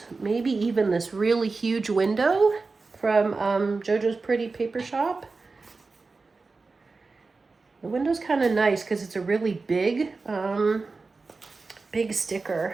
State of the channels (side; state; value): left; quieter; 4.0 dB